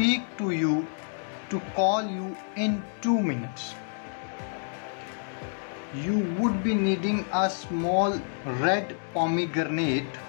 to you, to call you in 2 minutes. You would be needing a small red pomegranate.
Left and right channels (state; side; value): silent; right; digital silence